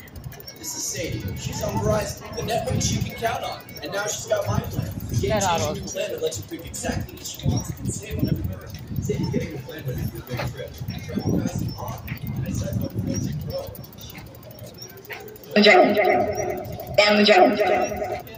This is Sadie. She's on Verizon, the network you can count on. And now she's got my plan. The game-changing new plan that lets you pick exactly what she wants and save on every minute. Sadie's getting the plan ready for a big trip. Travel fast and on. I said no friends and grow. Down the drain.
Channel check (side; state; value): both; identical; correlation 1.00